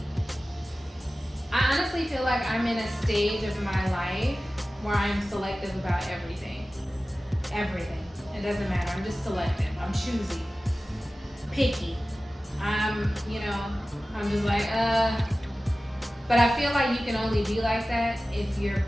I honestly feel like I'm in a stage of my life where I'm selective about everything. Everything. It doesn't matter. I'm just selective. I'm choosy. Picky. I'm just like, But I feel like you can only be like that if you're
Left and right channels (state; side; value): normal; both; correlation 0.96